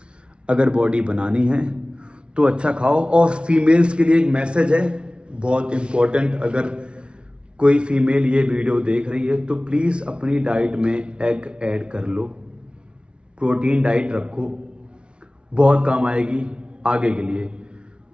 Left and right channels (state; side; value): late; left; 0.058 ms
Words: अगर बॉडी बनानी है तो अच्छा खाओ। और फीमेल्स के लिए एक मैसेज है, बहुत इम्पोर्टेंट, अगर कोई फीमेल ये वीडियो देख रही है तो प्लीज़ अपनी डाइट में एग ऐड कर लो, प्रोटीन डाइट रखो, बहुत काम आएगी आगे के लिए।